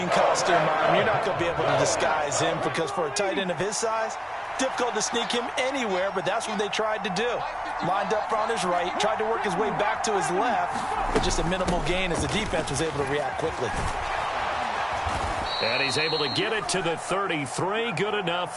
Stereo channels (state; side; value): identical; both; correlation 1.00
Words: costume on him. You're not going to be able to disguise him because for a tight end of his size, difficult to sneak him anywhere, but that's what they tried to do. Lined up on his right, tried to work his way back to his left, but just a minimal gain as the defense was able to react quickly. And he's able to get it to the 33, good enough